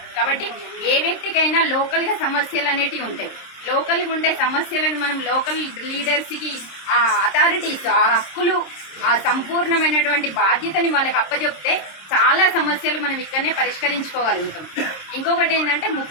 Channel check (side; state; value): right; late; 26 ms